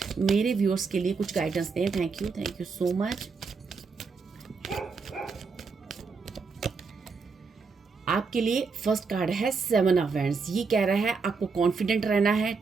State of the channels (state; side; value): quieter; left; 4.8 dB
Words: मेरे व्यूअर्स के लिए कुछ गाइडेंस दें। Thank you so much. आपके लिए फर्स्ट कार्ड है 7 ऑफ वैंड्स। ये कह रहा है आपको कॉन्फिडेंट रहना है,